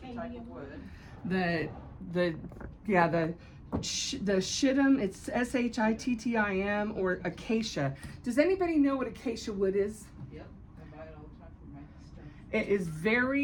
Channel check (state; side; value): identical; both; correlation 1.00